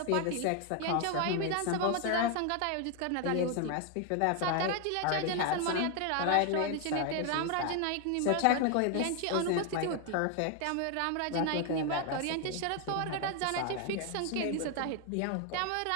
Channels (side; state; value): both; different; correlation 0.01